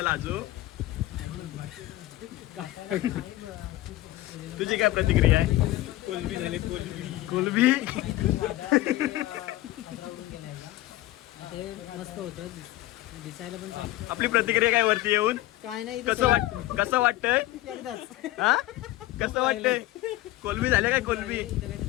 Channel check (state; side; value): quieter; right; 16.9 dB